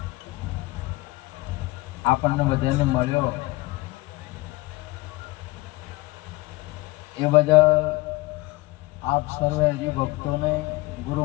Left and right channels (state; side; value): quieter; right; 21.2 dB